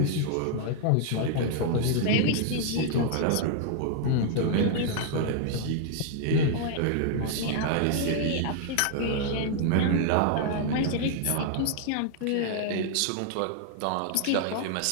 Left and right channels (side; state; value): both; different; correlation 0.00